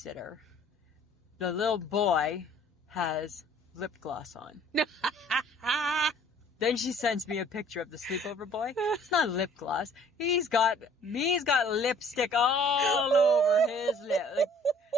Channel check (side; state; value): both; normal; correlation 0.55